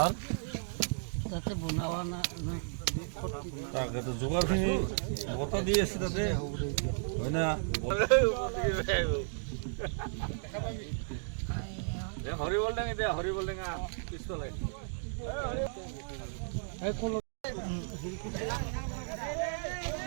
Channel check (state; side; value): silent; left; digital silence